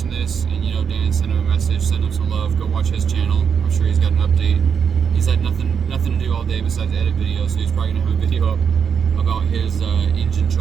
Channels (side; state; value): left; quieter; 7.0 dB